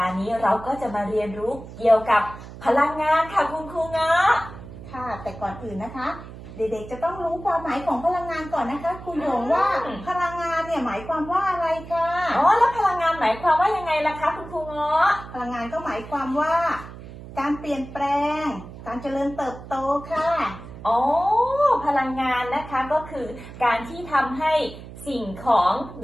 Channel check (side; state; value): right; noise; hum, 14 dB below the sound